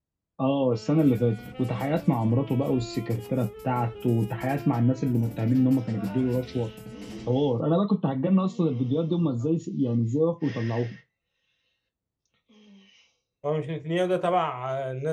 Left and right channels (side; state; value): both; identical; correlation 1.00